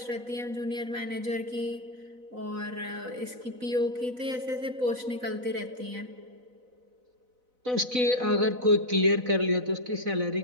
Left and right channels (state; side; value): late; left; 4.0 ms